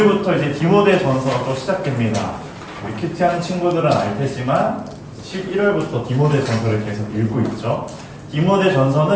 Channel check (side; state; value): both; identical; correlation 1.00